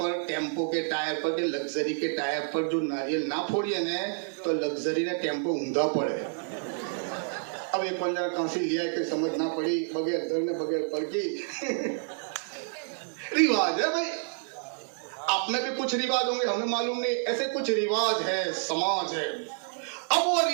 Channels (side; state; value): left; silent; 59 dB below the other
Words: ٹیمپو کے ٹائر پر, کہ لگزری کے ٹائر پر جو ناریل نہ پھوڑیے نا, تو لگزری نے ٹیمپو اوندا پڑے. اب یہ کون جگہ کہاں سے لیا کہ سمجھ نہ پڑی, بغیر دھرنے بغیر پڑ کی. رواج ہے بھائی, آپ میں بھی کچھ رواج ہوں گے, ہمیں معلوم نہیں, ایسے کچھ رواج ہے, سماج ہے. اب وہ